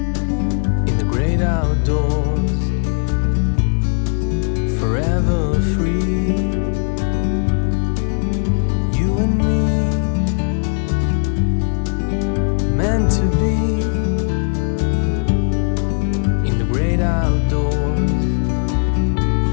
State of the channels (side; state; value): right; silent; digital silence